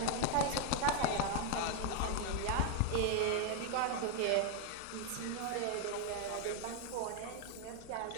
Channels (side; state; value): both; different; correlation 0.01